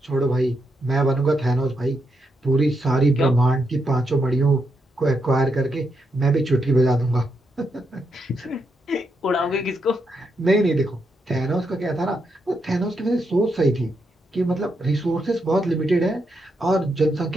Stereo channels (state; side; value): normal; both; correlation 0.82